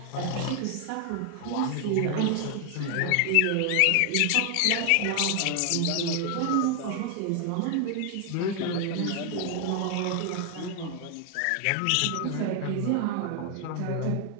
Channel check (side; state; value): both; different; correlation 0.00